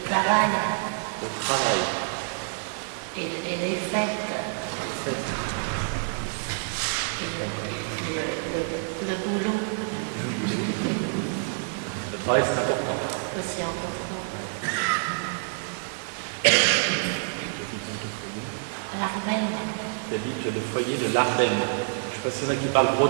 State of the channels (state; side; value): silent; left; digital silence